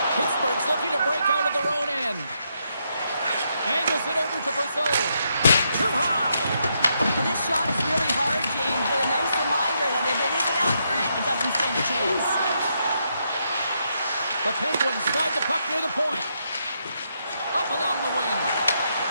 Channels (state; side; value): inverted; both; correlation -0.79